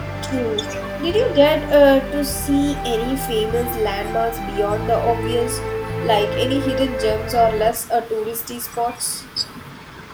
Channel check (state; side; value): identical; both; correlation 1.00